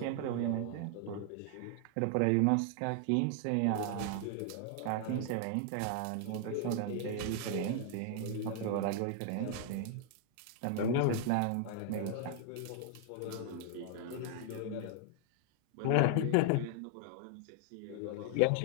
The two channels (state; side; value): different; both; correlation 0.00